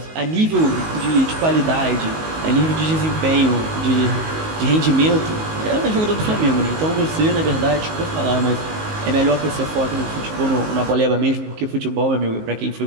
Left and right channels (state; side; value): late; left; 19 ms